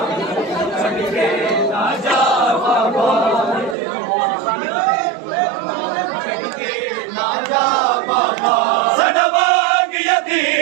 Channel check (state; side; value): drops out; left; at 3.8 s